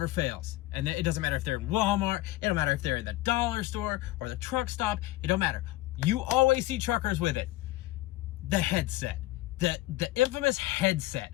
fails. And it doesn't matter if they're in Walmart, it don't matter if they're in the dollar store or the truck stop, it don't matter. You always see truckers with it. The headset. The infamous headset.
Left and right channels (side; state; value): right; quieter; 17.7 dB